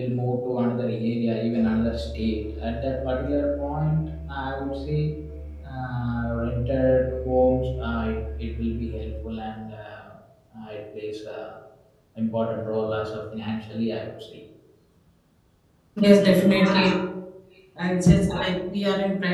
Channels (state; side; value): identical; both; correlation 1.00